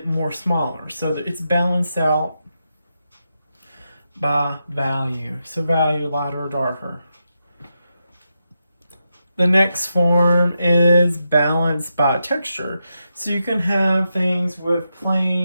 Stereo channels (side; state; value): both; inverted; correlation -0.86